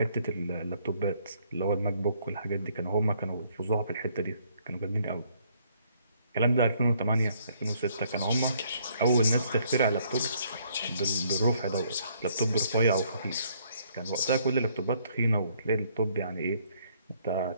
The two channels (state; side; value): inverted; both; correlation -0.67